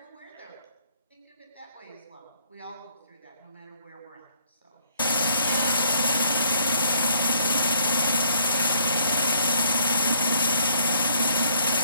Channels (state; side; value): inverted; both; correlation -0.65